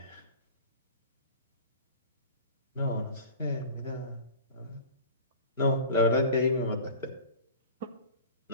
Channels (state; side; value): inverted; both; correlation -0.38